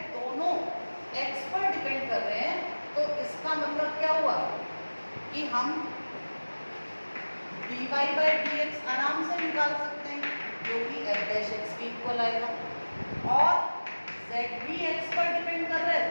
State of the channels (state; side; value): inverted; both; correlation -1.00